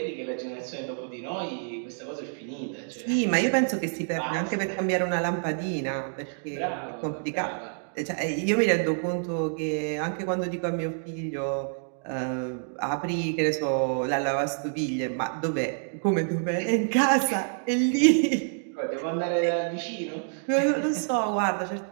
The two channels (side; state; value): left; silent; digital silence